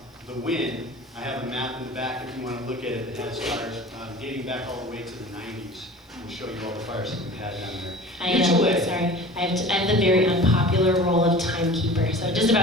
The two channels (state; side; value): normal; both; correlation 0.39